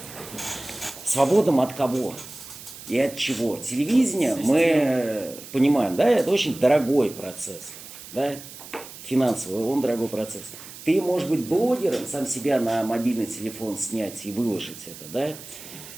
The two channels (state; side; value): noise; right; hiss, 15 dB below the sound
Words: Свободным от кого? И от чего? Телевидение, мы понимаем, да, это очень дорогой процесс, да, финансовый, он дорогой процесс. Ты, может быть, блогером, сам себя на мобильный телефон снять и выложить это, да,